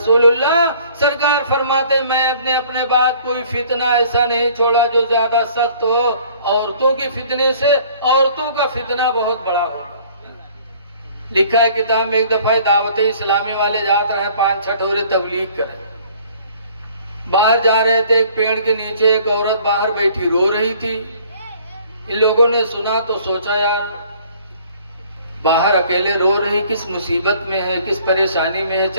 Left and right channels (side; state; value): both; inverted; correlation -0.55